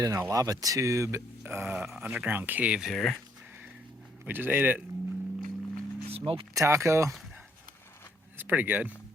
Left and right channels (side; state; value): both; normal; correlation 0.69